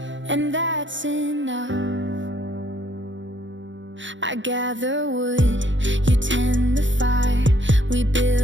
and that's enough. I gather wood, you tend the fire. We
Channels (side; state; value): left; late; 0.55 ms